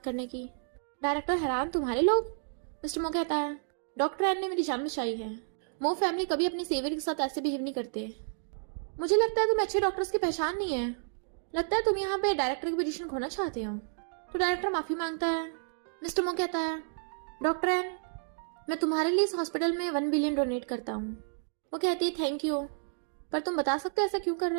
करने की? डायरेक्टर हैरान, तुम्हारे लोग? मिस्टर मो कहता है, डॉक्टर एन ने मेरी जान बचाई है, मो फैमिली कभी अपनी सेवियर के साथ ऐसे बिहेव नहीं करते। मुझे लगता है तुम्हें अच्छे डॉक्टर्स की पहचान नहीं है, लगता है तुम यहाँ पे डायरेक्टर की पोजीशन खोना चाहते हो। तो डायरेक्टर माफी मांगता है। मिस्टर मो कहता है, डॉक्टर एन मैं तुम्हारे लिए इस हॉस्पिटल में 1 बिलियन डोनेट करता हूँ। वो कहती है, थैंक यू, पर तुम बता सकते हो ऐसा क्यों कर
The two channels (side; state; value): left; silent; digital silence